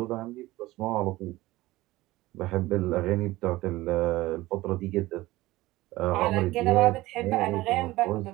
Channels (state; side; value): quieter; left; 18.3 dB